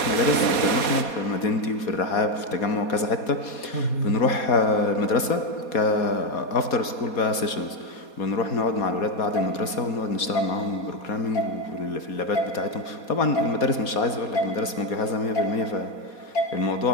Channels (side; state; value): right; late; 4.2 ms